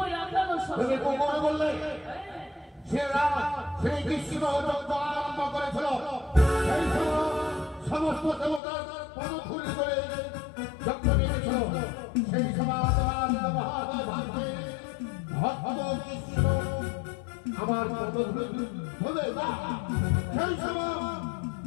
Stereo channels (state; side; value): drops out; right; at 8.6 s